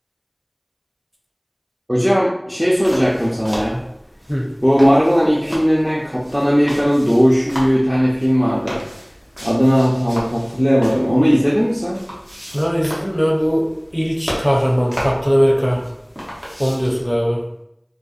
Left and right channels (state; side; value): identical; both; correlation 1.00